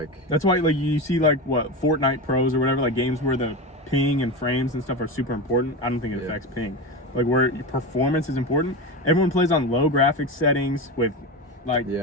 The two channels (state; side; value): normal; both; correlation 0.21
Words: That's why like you see like what, Fortnite Pros or whatever, like games where the ping and frames and stuff are super important. I don't think it affects ping. Like where your performance is important. Everyone plays on low graphics settings with like